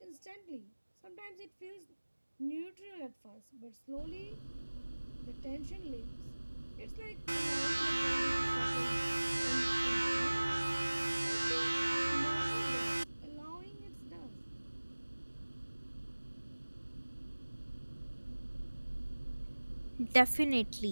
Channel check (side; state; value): both; inverted; correlation -1.00